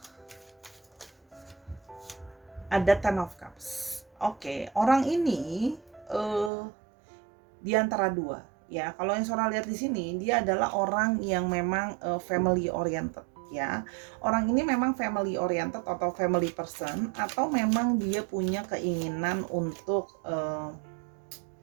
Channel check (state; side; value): drops out; left; at 6.5 s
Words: Ada Ten of Cups. Oke, orang ini di antara dua ya. Kalau yang Sora lihat di sini, dia adalah orang yang memang family oriented ya. Orang ini memang family oriented atau family person, atau memang dia punya keinginan untuk